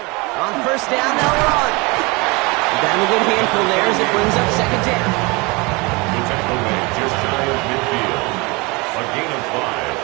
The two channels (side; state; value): left; quieter; 26.4 dB